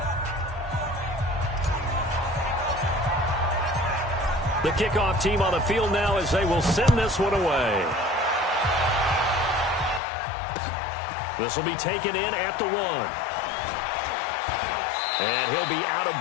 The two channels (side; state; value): right; drops out; at 10.0 s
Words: The kickoff team on the field now as they will send this one away. This will be taken in at the 1. And he'll be out of